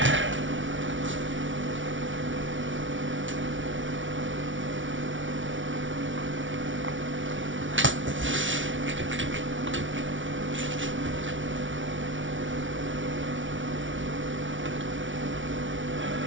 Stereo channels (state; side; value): late; left; 0.56 ms